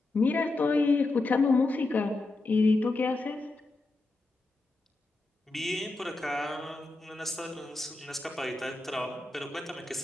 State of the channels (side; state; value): right; quieter; 3.1 dB